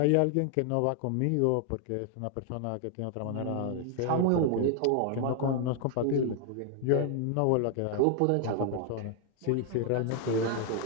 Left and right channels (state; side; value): different; both; correlation 0.00